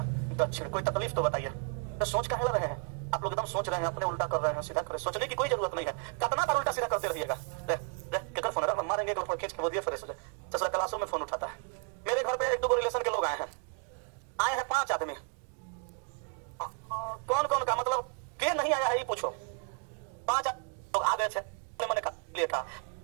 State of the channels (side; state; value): left; quieter; 38.5 dB